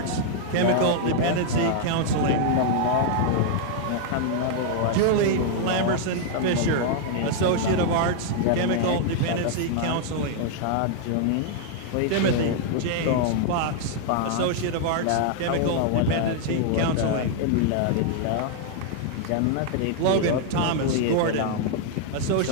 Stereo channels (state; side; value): different; both; correlation 0.00